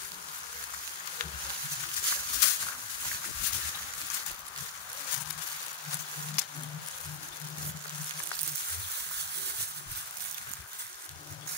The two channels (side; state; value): right; quieter; 3.9 dB